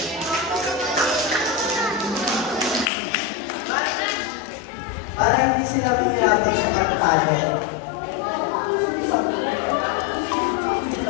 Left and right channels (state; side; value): drops out; right; at 2.9 s